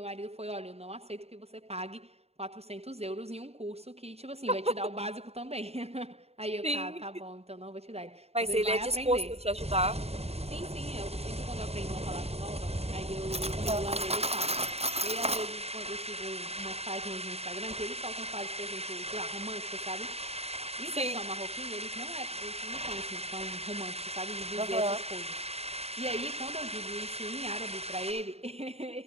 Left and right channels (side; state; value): left; late; 0.30 ms